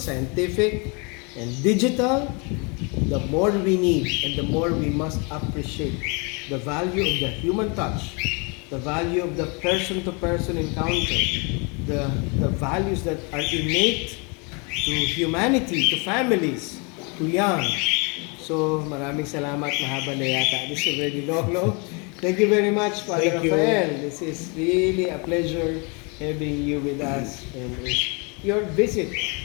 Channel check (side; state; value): right; quieter; 32.2 dB